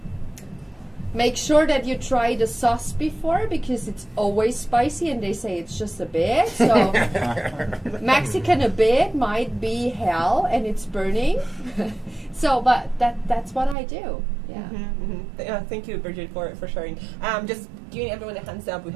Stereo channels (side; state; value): left; drops out; at 13.8 s